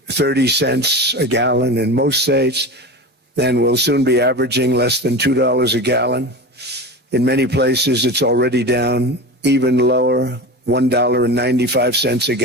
a gallon in most states. Then we'll soon be averaging less than $2 a gallon. In many places, it's already down even lower, $1.95 a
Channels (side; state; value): left; late; 12 ms